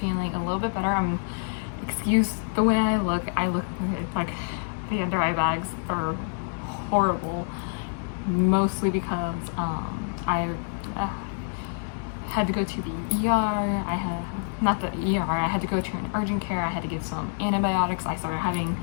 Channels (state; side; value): silent; right; digital silence